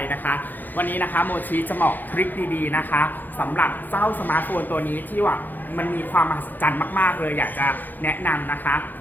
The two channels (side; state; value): right; late; 0.087 ms